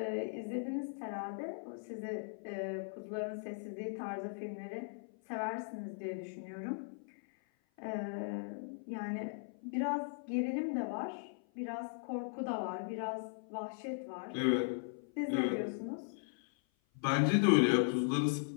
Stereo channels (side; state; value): right; silent; 52 dB below the other